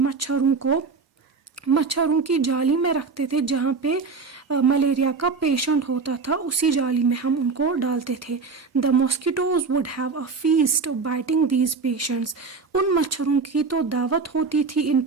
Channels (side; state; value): left; quieter; 4.7 dB